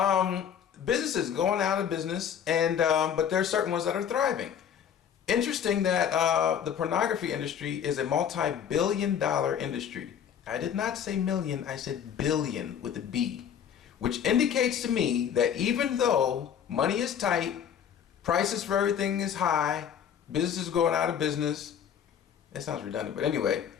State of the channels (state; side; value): quieter; right; 8.5 dB